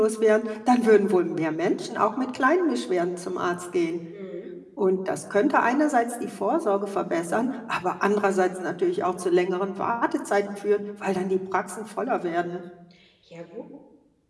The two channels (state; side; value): identical; both; correlation 1.00